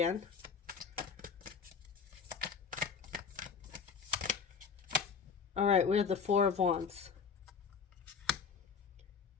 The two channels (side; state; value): right; quieter; 6.0 dB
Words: All right, we have the Four of Wands.